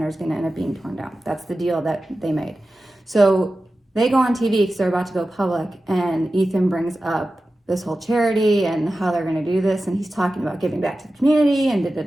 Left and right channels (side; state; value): both; normal; correlation 0.94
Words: is going to end up being torn down. That's the deal that they made. So they go on TV because they're about to go public, and Ethan brings up this whole charity and how they're going to do this, and he's talking about giving back to the community and